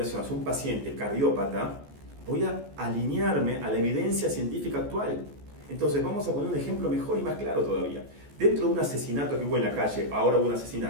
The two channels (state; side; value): late; left; 14 ms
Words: hacia un paciente cardiópata, voy a alinearme a la evidencia científica actual. Entonces vamos a poner un ejemplo mejor y más claro todavía. Dentro de un asesinato que hubo en la calle, ahora hubo un